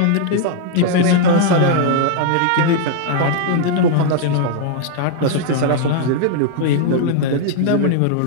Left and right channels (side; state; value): both; different; correlation 0.00